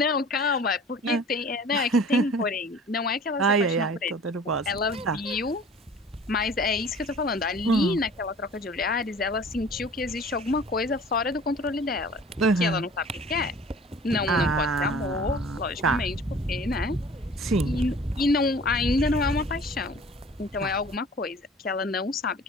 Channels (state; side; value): normal; both; correlation 0.46